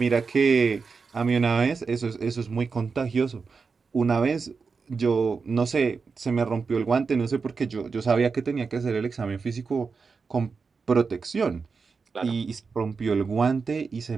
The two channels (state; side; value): quieter; left; 4.9 dB